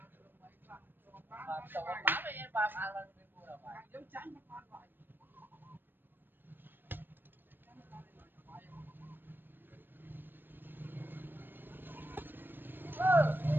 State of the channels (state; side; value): late; left; 0.095 ms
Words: cho bán với em ba lần mua là phải giống trắng